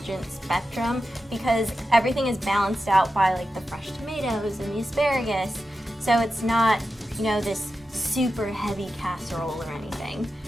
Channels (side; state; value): both; normal; correlation 0.91